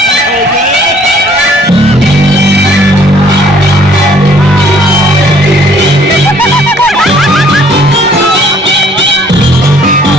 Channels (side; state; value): both; normal; correlation 0.60